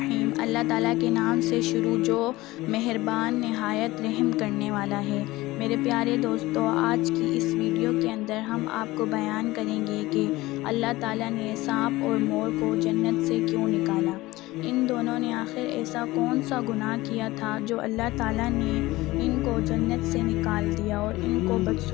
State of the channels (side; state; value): right; quieter; 19.1 dB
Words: اللہ تعالیٰ کے نام سے شروع جو مہربان نہایت رحم کرنے والا ہے۔ میرے پیارے دوستو، آج کی اس ویڈیو کے اندر ہم آپ کو بیان کریں گے کہ اللہ تعالیٰ نے سانپ اور مور کو جنت سے کیوں نکالا۔ ان دونوں نے آخر ایسا کون سا گناہ کیا تھا جو اللہ تعالیٰ نے ان کو جنت سے نکال دیا اور ان کو